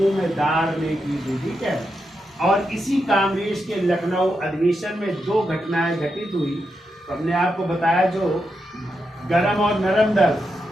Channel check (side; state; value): both; normal; correlation 0.85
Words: ने की थी। ठीक है। और इसी कांग्रेस के लखनऊ अधिवेशन में दो घटनाएं घटित हुई। तो हमने आपको बताया, जो गरम और नरम दल